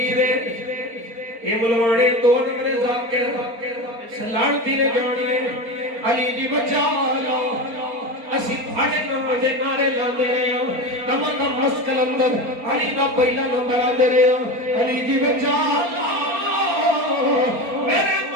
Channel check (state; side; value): late; left; 4.3 ms